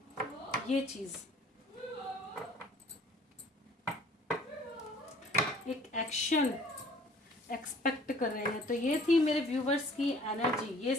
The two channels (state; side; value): normal; both; correlation 0.54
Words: ये चीज़ एक एक्शन एक्सपेक्ट कर रहे हैं। तो ये थी मेरे व्यूवर्स की एनर्जी, ये